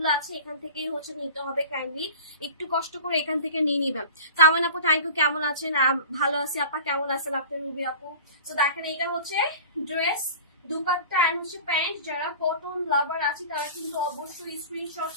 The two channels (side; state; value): both; inverted; correlation -0.38